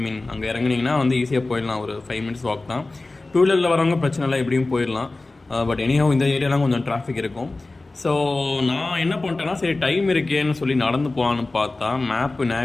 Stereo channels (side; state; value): right; quieter; 3.2 dB